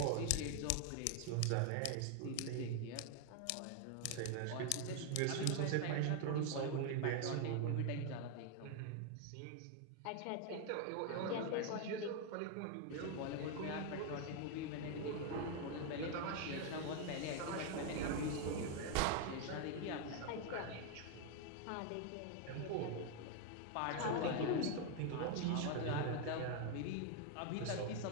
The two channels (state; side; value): different; both; correlation 0.00